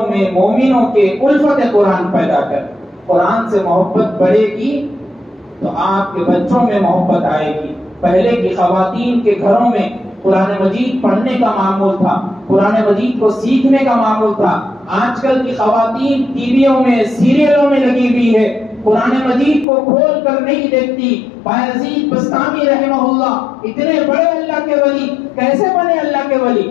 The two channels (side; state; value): right; drops out; at 19.7 s